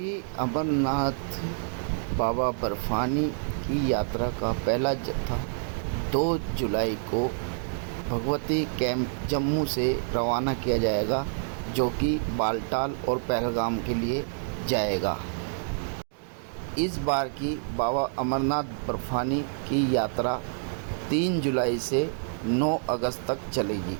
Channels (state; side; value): silent; left; digital silence